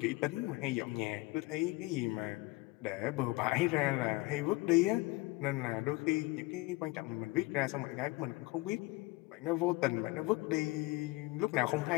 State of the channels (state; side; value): quieter; right; 21.7 dB